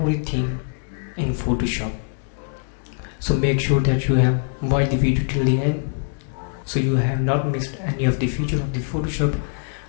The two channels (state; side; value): silent; right; digital silence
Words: in Photoshop. So make sure that you have watched the video till the end so you have not missed any of the feature of the Photoshop.